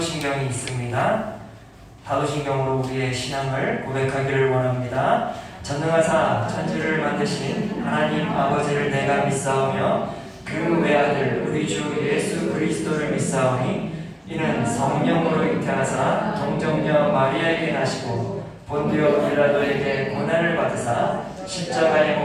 있습니다. 사도신경으로 우리의 신앙을 고백하기를 원합니다. 전능하사 천지를 만드신 하나님 아버지를 내가 믿사오며 그 외아들 우리 주 예수 그리스도를 믿사오니 이는 성령으로 잉태하사 동정녀 마리아에게 나시고 본디오 빌라도에게 고난을 받으사 십자가에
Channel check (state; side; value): identical; both; correlation 1.00